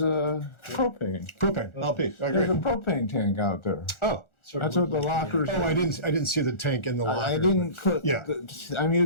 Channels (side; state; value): right; late; 1.4 ms